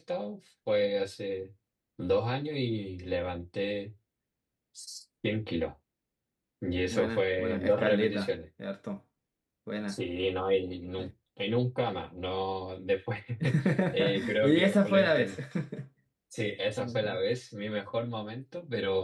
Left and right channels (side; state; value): both; identical; correlation 1.00